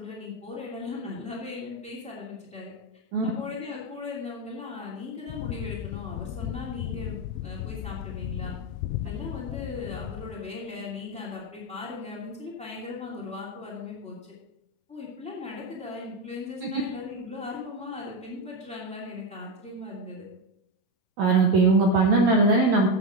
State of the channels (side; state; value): both; normal; correlation 0.12